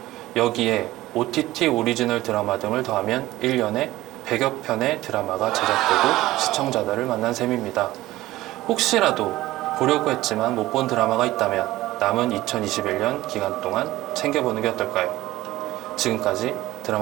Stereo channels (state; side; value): quieter; left; 16.8 dB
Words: 여기에 OTT 오리지널 드라마 등을 더하면 1년에 100여 편의 드라마가 제작되고 시청자들을 만난 셈입니다. 혹시라도 보려고 했지만 못 본 드라마가 있다면 남은 2021년 기간 동안 챙겨보는 게 어떨까요? 지금까지